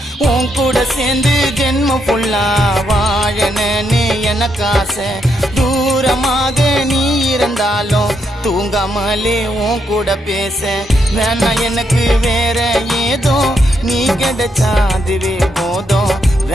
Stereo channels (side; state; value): both; normal; correlation 0.78